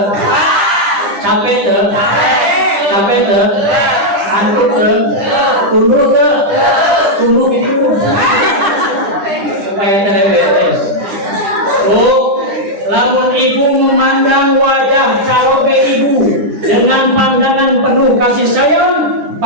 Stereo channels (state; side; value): late; left; 9.9 ms